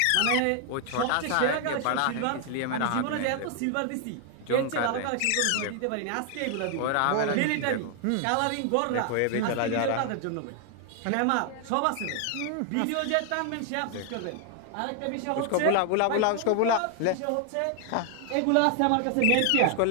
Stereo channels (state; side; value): different; both; correlation 0.00